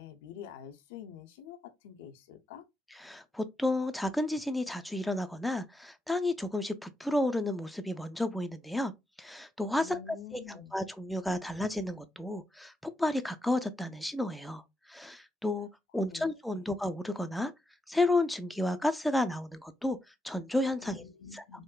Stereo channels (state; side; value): normal; both; correlation 0.85